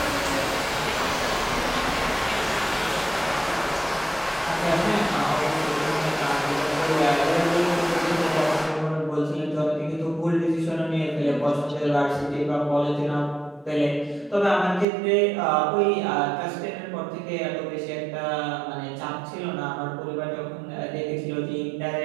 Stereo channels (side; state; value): left; drops out; at 14.9 s